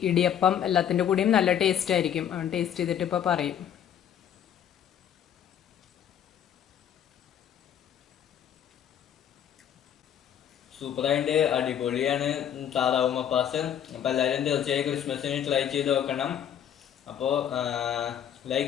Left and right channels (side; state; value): right; quieter; 9.5 dB